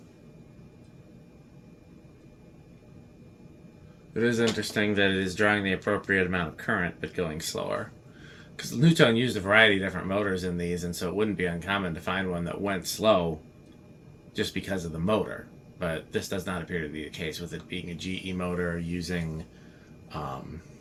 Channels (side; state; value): both; identical; correlation 1.00